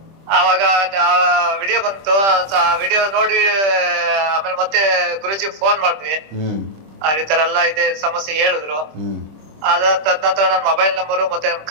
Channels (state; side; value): late; left; 25 ms